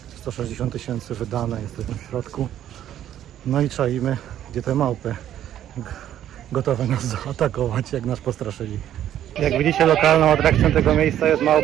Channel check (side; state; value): left; quieter; 11.3 dB